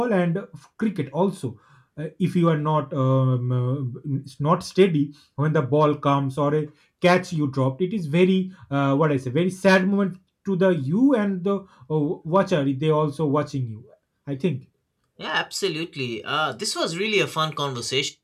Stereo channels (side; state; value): both; identical; correlation 1.00